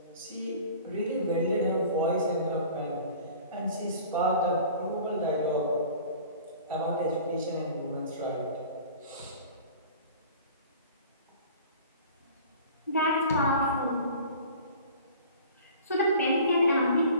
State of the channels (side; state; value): both; inverted; correlation -0.44